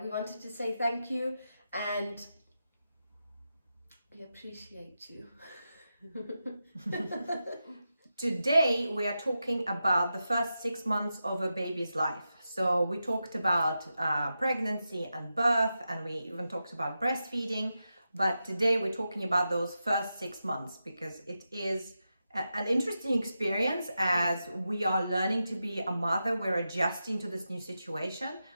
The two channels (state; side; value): inverted; both; correlation -0.89